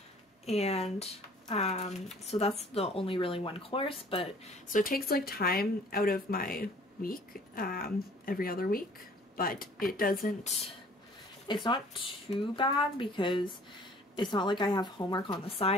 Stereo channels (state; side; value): normal; both; correlation 0.53